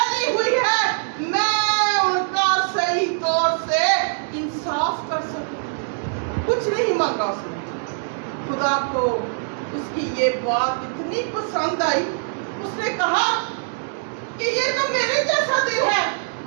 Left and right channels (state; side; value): silent; left; digital silence